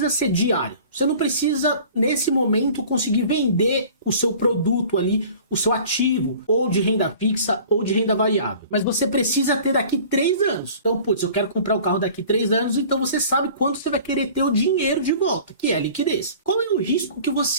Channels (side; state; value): both; inverted; correlation -0.46